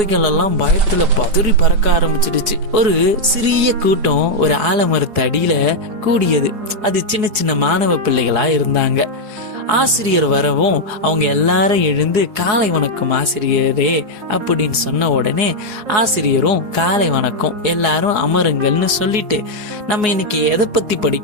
எல்லாம் பயத்துல பதறி பறக்க ஆரம்பிச்சிடுச்சு. ஒரு சிறிய கூட்டம் ஒரு ஆலமரத்து அடியில கூடியது. அது சின்ன சின்ன மாணவ பிள்ளைகளா இருந்தாங்க. ஆசிரியர் வரவும் அவங்க எல்லாரும் எழுந்து காலை வணக்கம் ஆசிரியரே அப்படின்னு சொன்ன உடனே ஆசிரியரும் காலை வணக்கம், எல்லாரும் அமருங்கள்னு சொல்லிட்டு, நம்ம இன்னைக்கு எதை பத்தி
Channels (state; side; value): late; left; 4.8 ms